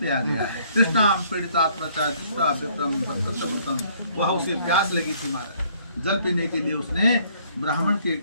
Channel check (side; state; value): both; inverted; correlation -0.62